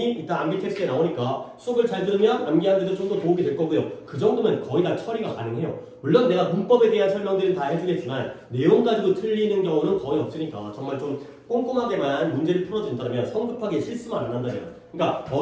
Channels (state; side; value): identical; both; correlation 1.00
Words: 이따 암기 테스트에 나오니까 수업을 잘 들으면 암기하는 데도 좀 더 도움이 될 거고요. 그 정도면 거의 다 처리가 가능해요. 물론 내가 문법에 대한 설명들은 다 해주겠지만 내용 가지고 틀리는 경우는 거의 없으니까 정말 좀 꼼꼼하게만 문제를 풀어준다면 성급하게 실수만 안 한다면